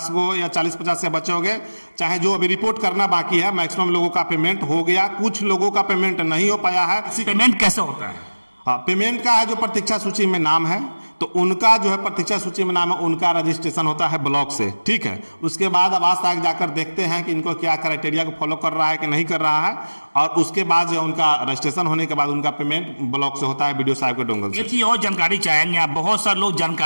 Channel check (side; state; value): both; inverted; correlation -1.00